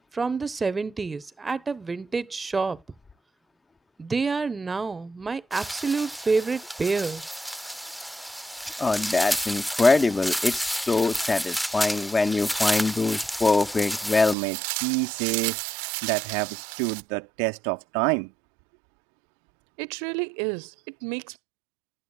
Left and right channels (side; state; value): left; drops out; at 14.4 s